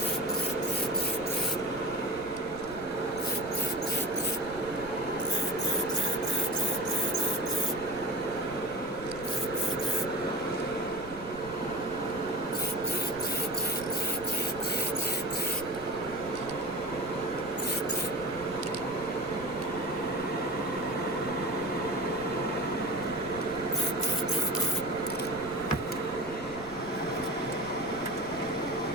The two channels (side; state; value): right; noise; rumble, 16 dB below the sound